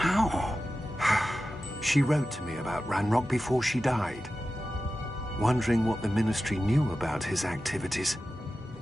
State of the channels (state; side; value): normal; both; correlation 0.93